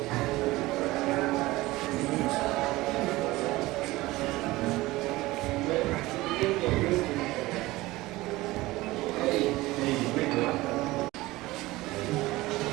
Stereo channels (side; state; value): left; quieter; 19.2 dB